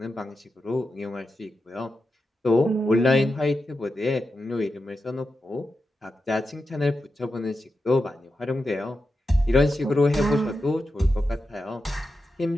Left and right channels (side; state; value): both; normal; correlation 0.89